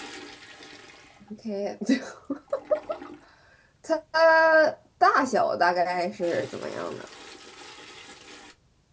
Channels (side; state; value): both; identical; correlation 1.00